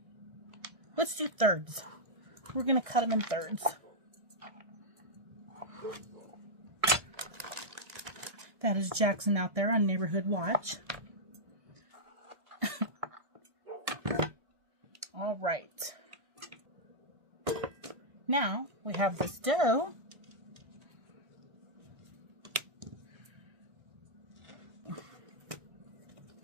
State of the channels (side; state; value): left; late; 1.6 ms